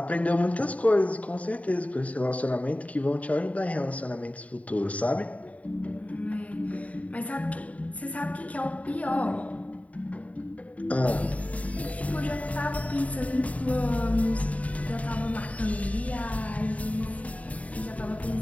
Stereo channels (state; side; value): late; right; 0.068 ms